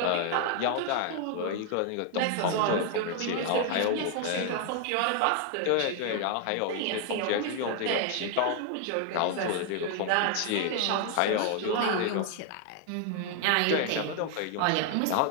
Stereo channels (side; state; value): both; different; correlation 0.00